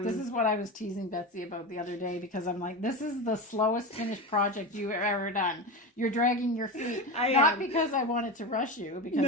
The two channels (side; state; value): both; normal; correlation 0.22